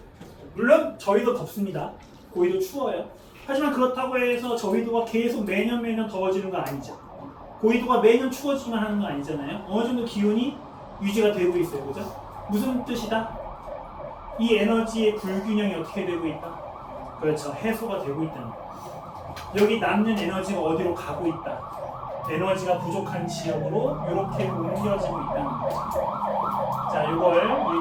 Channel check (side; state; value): both; identical; correlation 1.00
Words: 물론 저희도 덥습니다. 고위도 추워요. 하지만 그렇다고 해서 저위도가 계속 매년 더워지는 건 아니죠. 고위도가 매년 추워지기만 하는 건 아니잖아요. 어느 정도 기온이 유지가 되고 있어요, 그죠? 무슨 뜻이다? 이 에너지의 불균형이 어떻게 되고 있다? 그렇죠. 해소가 되고 있다는 거예요. 여기 남는 에너지가 어디로 가고 있다? 에너지가 부족한 지역으로 이렇게 옮겨지고 있다는 거죠. 자, 이걸 우리